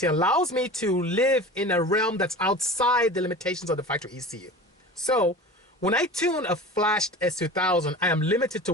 allows me to live in a realm that's outside the limitations of the factory ECU. So when I tune a flashed S2000, I am limited to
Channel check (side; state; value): both; normal; correlation 0.35